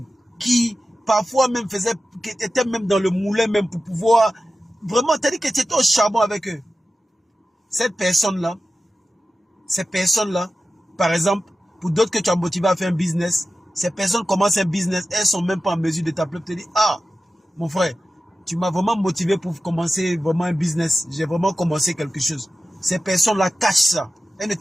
qui parfois même était même dans le moulin même pour pouvoir vraiment, t'as dit que tu étais au charbon avec eux. Ces personnes-là, par exemple, pour d'autres que tu as motivé à faire un business, ces personnes commencent un business, elles sont même pas en mesure de t'appeler pour te dire, ah, mon frère, tu m'as vraiment motivé pour commencer vraiment un business. J'ai vraiment commencé quelque chose. Ces personnes-là cachent ça. Elles ne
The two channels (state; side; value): normal; both; correlation 0.93